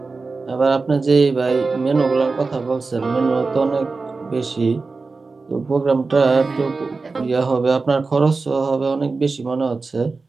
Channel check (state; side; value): quieter; left; 4.0 dB